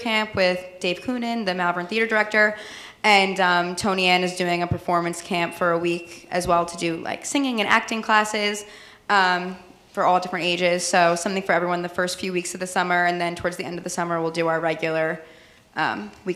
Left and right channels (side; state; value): both; identical; correlation 1.00